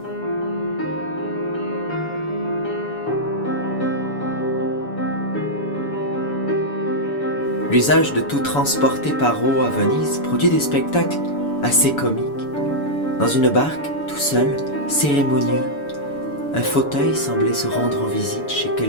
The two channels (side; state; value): right; late; 7.0 ms